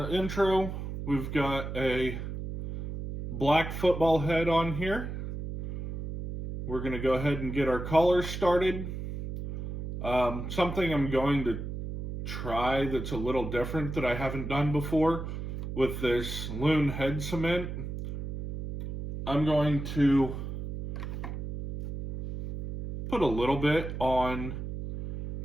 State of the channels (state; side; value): noise; right; hum, 6 dB below the sound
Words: intro, we've got a black football head on here. We're going to go ahead and get our colors started. Something I'm going to try that's a little different that I haven't done before with this loon head cement. I'm going to put a little bit on